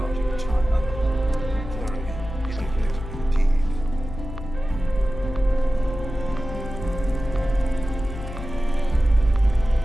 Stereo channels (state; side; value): noise; left; hum, 10 dB below the sound